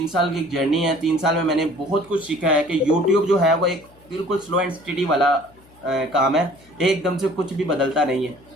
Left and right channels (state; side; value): noise; left; hum, 27 dB below the sound